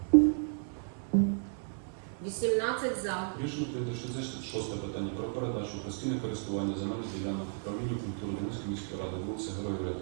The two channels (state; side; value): silent; left; 56 dB below the other